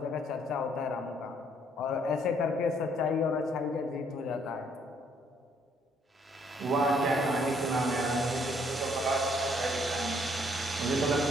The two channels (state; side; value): normal; both; correlation 0.66